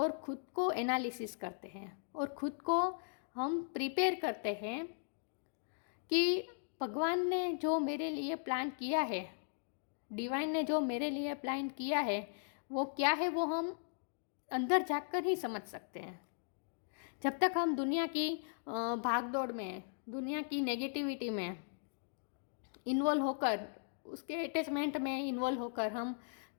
खुद को एनालिसिस करते हैं और खुद को हम प्रिपेयर करते हैं कि भगवान ने जो मेरे लिए प्लान किया है, डिवाइन ने जो मेरे लिए प्लान किया है, वो क्या है, वो हम अंदर जाकर ही समझ सकते हैं। जब तक हम दुनिया की भागदौड़ में, दुनिया की नेगेटिविटी में इन्वॉल्व होकर, उसके अटैचमेंट में इन्वॉल्व होकर हम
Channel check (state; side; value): silent; right; digital silence